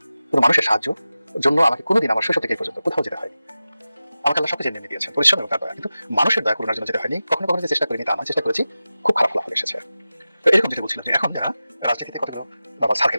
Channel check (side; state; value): both; inverted; correlation -0.95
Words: কোনো মানুষের সাহায্য জন্য আমাকে কোনোদিন আমার শৈশব থেকে এই পর্যন্ত কোথাও যেতে হয়নি। আমাকে আল্লাহ সবকিছু এনে দিয়েছেন, পরিশ্রম এবং তার দয়া। কিন্তু মানুষের দয়া করুণার জন্য যেতে হয়নি। কখনো কখনো যে চেষ্টা করিনি তা আমার চেষ্টা করেছি, খুব খারাপ ফলাফল এসেছে। তো এরকম যদি বলছিলাম যে এখন যারা রাজনীতিতে কতগুলো সার্কেল